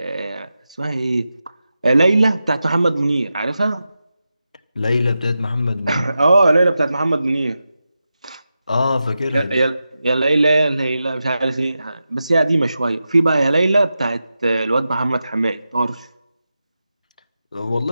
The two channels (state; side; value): inverted; both; correlation -0.91